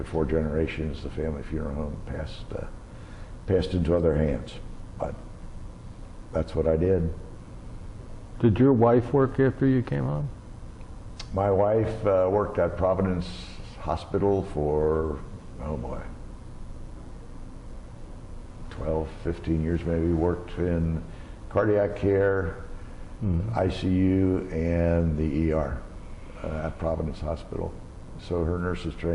4 generations, the family funeral home passed into other hands. But that's what I did. Did your wife work after you came home? My wife worked at Providence Hospital for, oh boy, 12, 15 years maybe. Worked in cardiac care, ICU, and the ER at Providence Hospital. So her nurse's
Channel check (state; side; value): identical; both; correlation 1.00